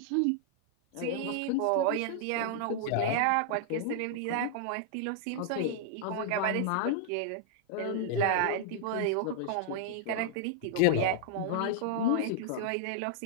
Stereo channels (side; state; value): both; different; correlation -0.01